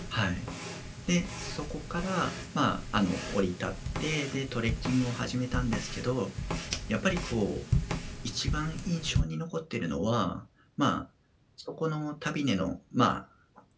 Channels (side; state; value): both; identical; correlation 1.00